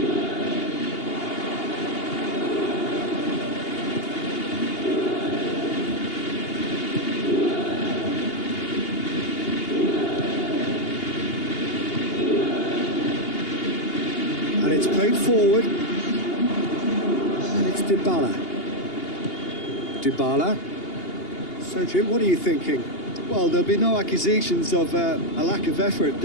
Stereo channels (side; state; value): right; late; 2.8 ms